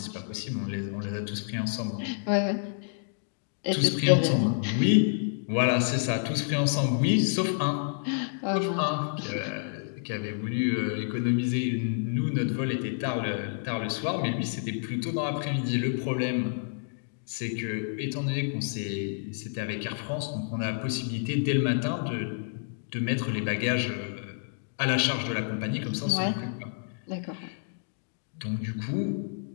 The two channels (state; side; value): silent; right; digital silence